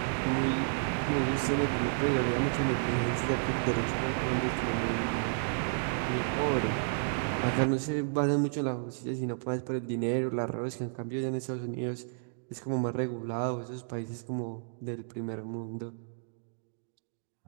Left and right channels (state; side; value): silent; left; digital silence